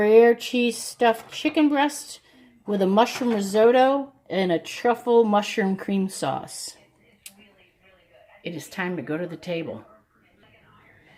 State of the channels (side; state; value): both; identical; correlation 1.00